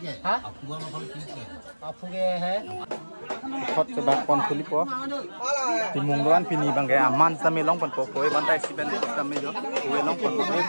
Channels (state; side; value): inverted; both; correlation -1.00